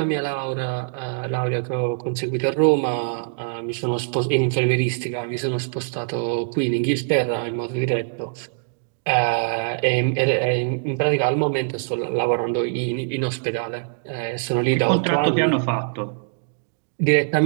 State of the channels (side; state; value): left; silent; digital silence